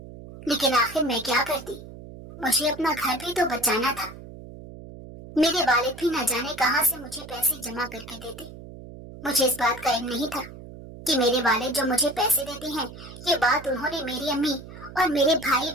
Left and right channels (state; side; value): noise; right; hum, 15 dB below the sound